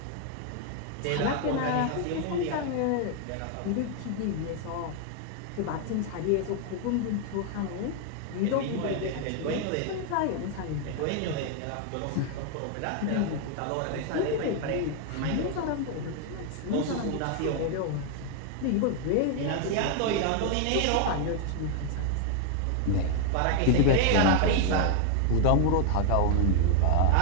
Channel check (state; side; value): different; both; correlation 0.00